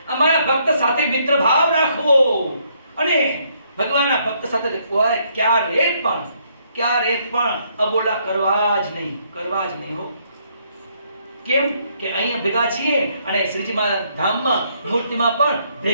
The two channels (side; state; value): both; inverted; correlation -0.71